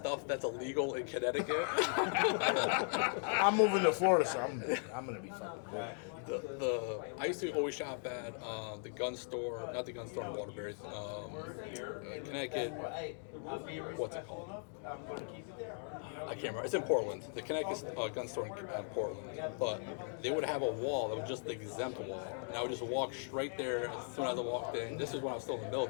that's illegal in Connecticut. I'm moving to Florida, so I'm gonna be fucking good. I used to always shop at the gun store, not the gun store in Waterbury, Connecticut, what's it called? I can't remember. It's in Portland, the Connecticut gun store in Portland. But they would have a wall that was just the exempt wall. And I would just walk straight there as soon as I walked in. This is when I was still in the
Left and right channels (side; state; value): right; silent; 52 dB below the other